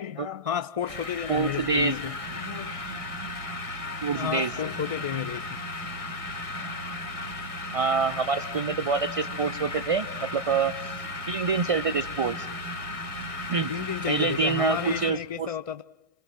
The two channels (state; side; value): late; left; 1.6 ms